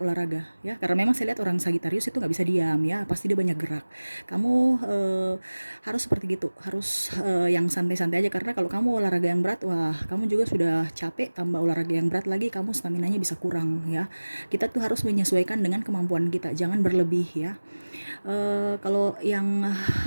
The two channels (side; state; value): both; inverted; correlation -1.00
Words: ya, karena memang saya lihat orang Sagittarius itu nggak bisa diam ya, pasti dia banyak gerak. Kamu harus seperti gitu, harus yang santai-santai aja, karena kalau kamu olahraga yang berat, wah kamu juga sudah capek, tambah olahraga yang berat lagi, kamu staminanya bisa kurang ya. Kita tuh harus menyesuaikan dengan kemampuan kita, jangan berlebih ya. Kalau yang